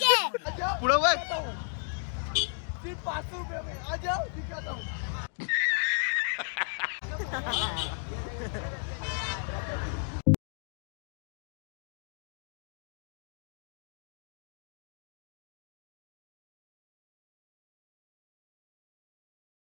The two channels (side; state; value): right; silent; 55 dB below the other